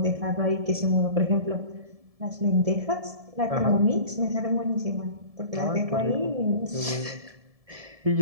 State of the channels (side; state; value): left; late; 1.7 ms